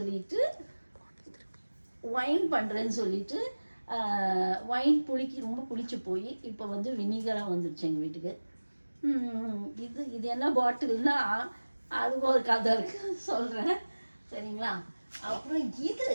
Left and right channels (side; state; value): both; inverted; correlation -1.00